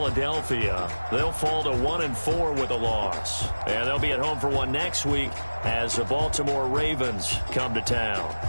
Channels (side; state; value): both; inverted; correlation -1.00